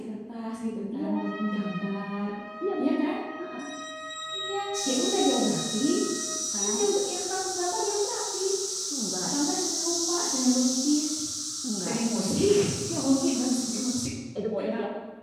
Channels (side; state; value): both; identical; correlation 1.00